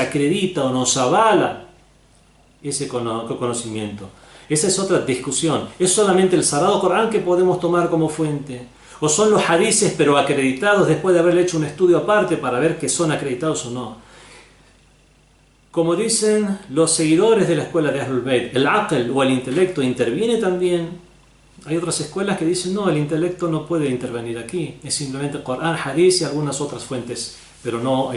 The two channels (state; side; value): identical; both; correlation 1.00